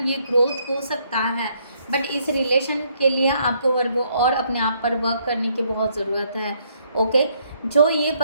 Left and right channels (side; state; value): both; inverted; correlation -0.70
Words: ये ग्रोथ हो सकता है, बट इस रिलेशन के लिए आपको वर्गो और अपने आप पर वर्क करने की बहुत ज़रूरत है, ओके। जो ये